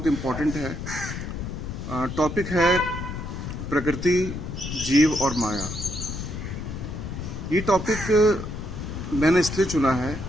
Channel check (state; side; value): noise; left; rumble, 6 dB below the sound